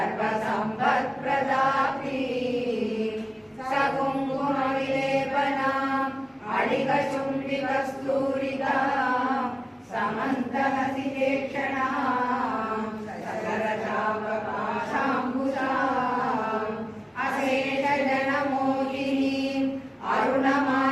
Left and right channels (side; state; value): both; identical; correlation 1.00